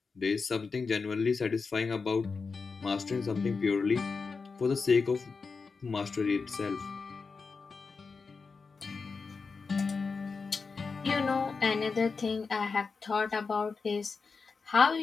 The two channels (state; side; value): quieter; right; 4.7 dB